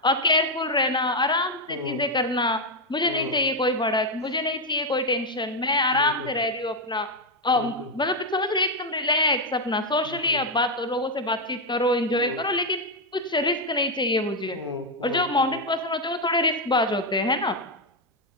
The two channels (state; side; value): normal; both; correlation 0.04